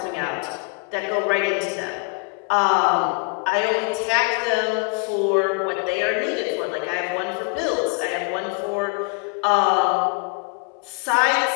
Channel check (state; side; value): quieter; right; 34.5 dB